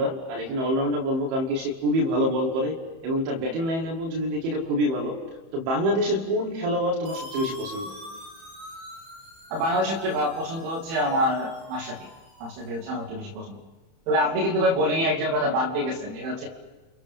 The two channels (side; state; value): left; late; 31 ms